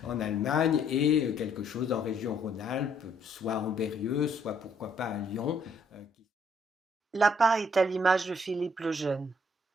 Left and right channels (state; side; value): normal; both; correlation 0.67